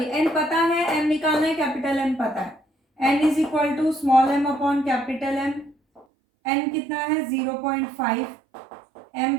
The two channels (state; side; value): drops out; left; at 6.1 s